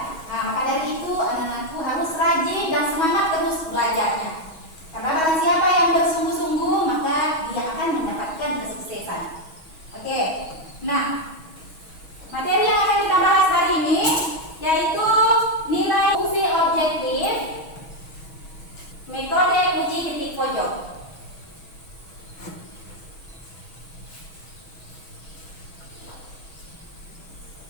Nah, maka dari itu anak-anakku harus rajin dan semangat terus belajarnya. Karena barang siapa yang bersungguh-sungguh, maka dia akan mendapatkan kesuksesan. Oke, nah materi yang akan kita bahas hari ini yaitu nilai fungsi objektif, metode uji titik pojok.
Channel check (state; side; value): late; right; 6.2 ms